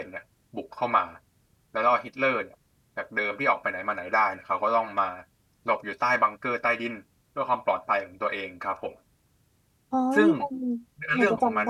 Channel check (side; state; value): both; identical; correlation 1.00